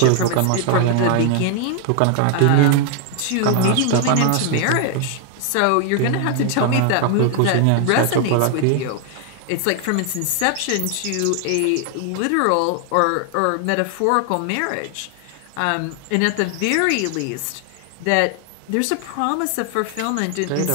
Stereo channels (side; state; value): both; different; correlation 0.00